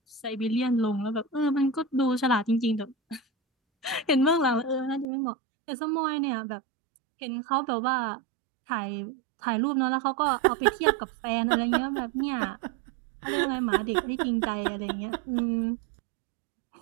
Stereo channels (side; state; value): left; drops out; at 5.1 s